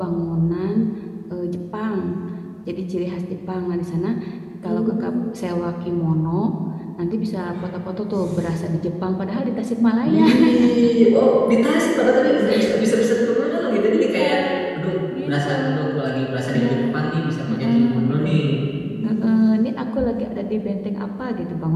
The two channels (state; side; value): identical; both; correlation 1.00